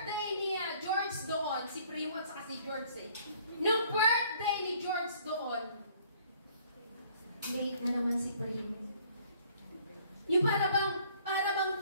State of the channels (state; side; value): inverted; both; correlation -0.59